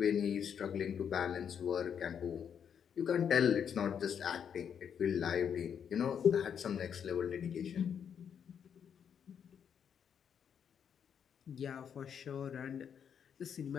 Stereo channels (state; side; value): quieter; right; 7.9 dB